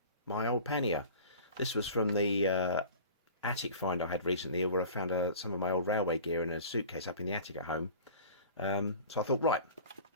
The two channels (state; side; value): inverted; both; correlation -0.41